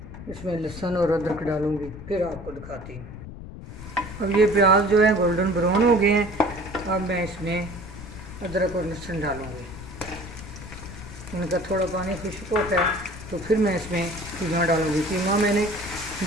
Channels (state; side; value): noise; left; rumble, 13 dB below the sound